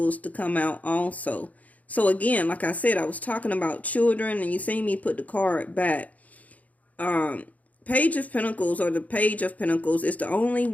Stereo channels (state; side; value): late; right; 0.073 ms